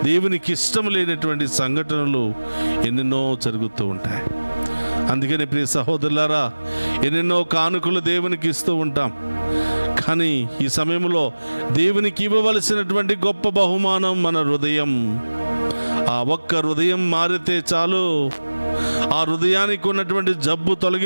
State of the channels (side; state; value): both; inverted; correlation -1.00